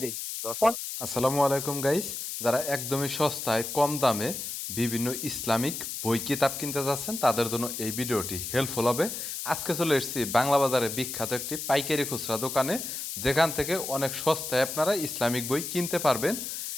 দিই। আসসালামু আলাইকুম গাইস, যারা একদমই সস্তায় কম দামে বিভিন্ন ইসলামিক বই কিতাব কিনতে যাচ্ছেন তাদের জন্য এই ভিডিওটি হেল্পফুল হবে। আজকে চলে এসেছি বাংলা বাজারে বিখ্যাত একটি পাইকারি খুচরা দোকানে, যেখান থেকে অনেক সস্তায় আপনারা ইসলামিক বই কিনতে পারবেন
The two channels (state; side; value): noise; left; hiss, 6 dB below the sound